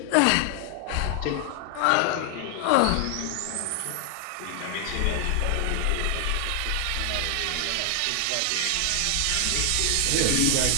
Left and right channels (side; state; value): both; different; correlation 0.00